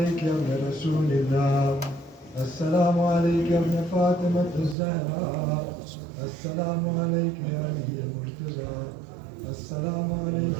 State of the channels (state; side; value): drops out; left; at 4.8 s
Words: يا ابن رسول الله، السلام عليك يا ابن فاطمة الزهراء، السلام عليك يا علي المرتضى، السلام عليك